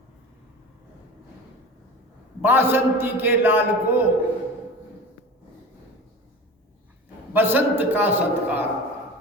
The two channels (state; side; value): normal; both; correlation 0.33